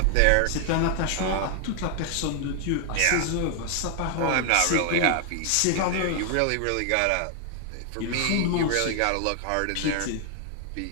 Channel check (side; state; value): both; different; correlation 0.00